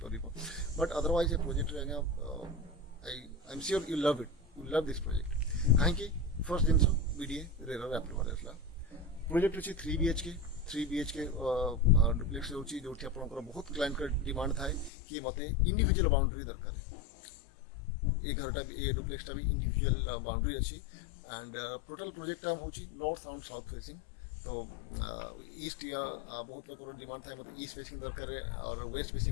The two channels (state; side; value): drops out; right; at 14.9 s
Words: पार बट अदरवाइज ये प्रोजेक्ट आज्ञा आई am sure you love it you love this project कहीं फर्स्ट जिन बीडीए रेरा अप्रूवल आसला प्रोजेक्ट अच्छी 3 BHK डुप्लेक्स होची जो आप बहुत क्लाइंट का डिमांड था कि मत इंडिविजुअल बाउंड्री दरकार ये घरटा भी ये डुप्लेक्सटा भी इंडिविजुअल बाउंड्री अच्छी एंड टोटल प्रोजेक्ट हूँ नॉर्थ एंड साउथ फेसिंग तो ईस्ट या बहुत लोग डिमांड था मतलब ईस्ट फेसिंग दरकार और वेस्ट